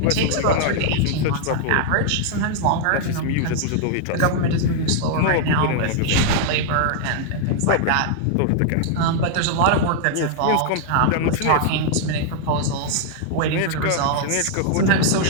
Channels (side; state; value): both; different; correlation -0.01